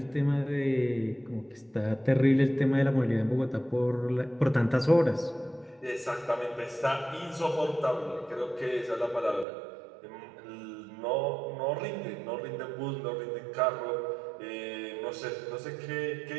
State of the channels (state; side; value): drops out; left; at 9.5 s